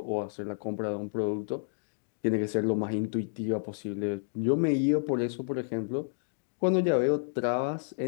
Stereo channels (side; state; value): right; silent; digital silence